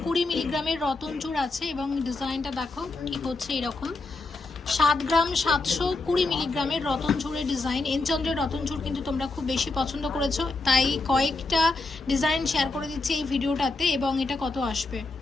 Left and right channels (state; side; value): quieter; right; 3.4 dB